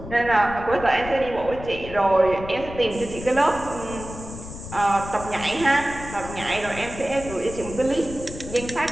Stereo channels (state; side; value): noise; left; rumble, 12 dB below the sound